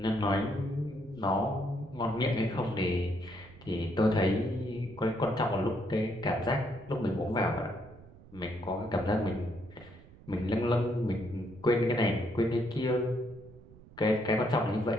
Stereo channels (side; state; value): right; noise; rumble, 21 dB below the sound